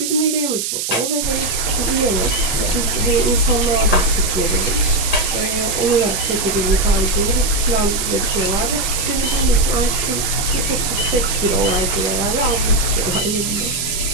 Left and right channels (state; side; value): noise; right; hiss, 2 dB below the sound